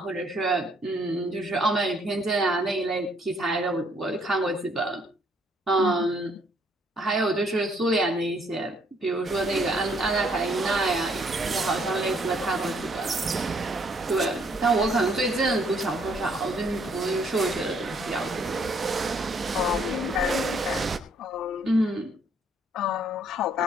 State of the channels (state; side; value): normal; both; correlation 0.66